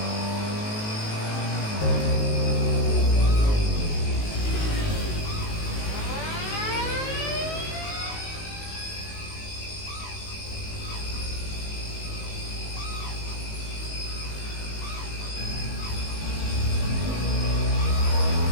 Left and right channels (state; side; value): late; right; 19 ms